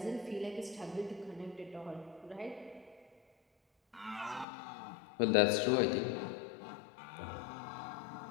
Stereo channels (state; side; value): drops out; right; at 4.5 s